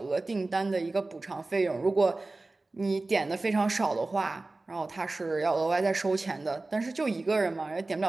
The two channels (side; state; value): left; quieter; 3.2 dB